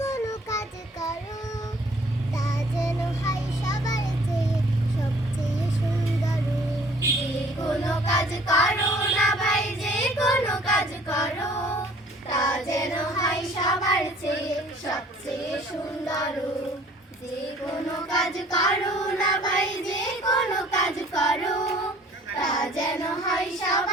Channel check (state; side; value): normal; both; correlation 0.55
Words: কাজ করো, তা যেন হয় সবার চেয়ে সবচেয়ে সুন্দর। যে কোনো কাজ করো না ভাই, যে কোনো কাজ করো, তা যেন হয় সবার চেয়ে সবচেয়ে সুন্দর। যে কোনো কাজ করো না ভাই, যে কোনো কাজ করো, তা যেন হয়